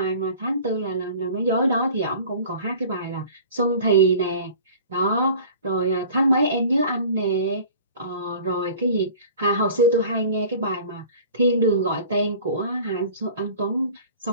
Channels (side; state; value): both; inverted; correlation -0.44